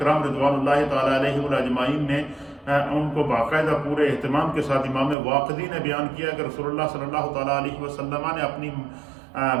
رضوان اللہ تعالیٰ علیہ اجمعین نے ان کو باقاعدہ پورے اہتمام کے ساتھ امام واقدی نے بیان کیا کہ رسول اللہ صلی اللہ تعالیٰ علیہ وسلم نے اپنی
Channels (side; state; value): left; drops out; at 5.2 s